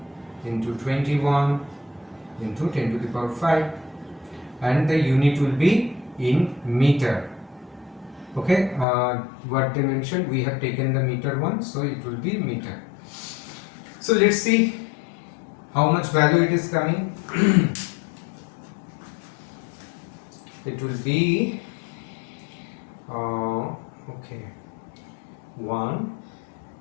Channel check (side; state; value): right; drops out; at 8.8 s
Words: into 21 into 10 to the power 5, and the unit will be in meter. Okay, what they mentioned, we have taken the meter one, so it will be meter. So let's see how much value it is coming. It will be